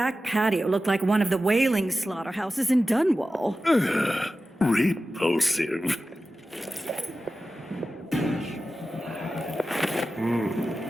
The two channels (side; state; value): both; normal; correlation 0.94